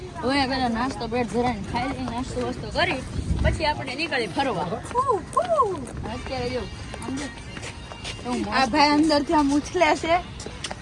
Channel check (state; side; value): identical; both; correlation 1.00